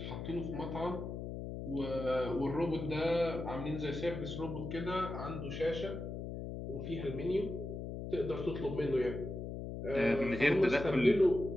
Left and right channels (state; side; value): noise; left; hum, 6 dB below the sound